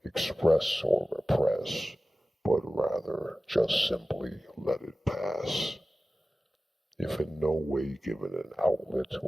express or repress, but rather just simply let it pass. If in no way given an outlet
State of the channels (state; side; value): normal; both; correlation 0.96